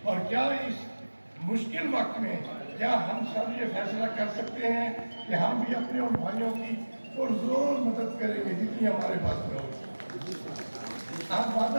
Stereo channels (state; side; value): inverted; both; correlation -1.00